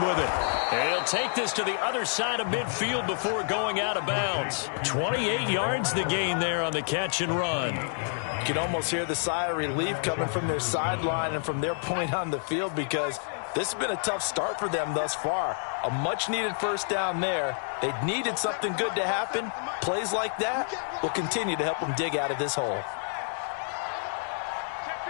with it. And he'll take this to the other side of midfield before going out of bounds. 28 yards the gain there on the catch and run. You can almost hear the sigh of relief coming from their sideline and from their point on the field because this has been a tough start for them thus far. A much-needed 1st down there. They needed something good to happen. Plays like that will continue to help them dig out of this hole.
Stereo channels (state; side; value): silent; right; digital silence